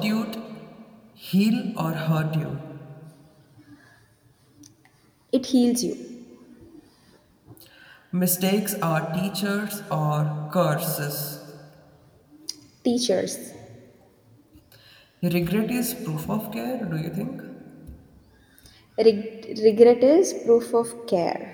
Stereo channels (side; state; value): both; identical; correlation 1.00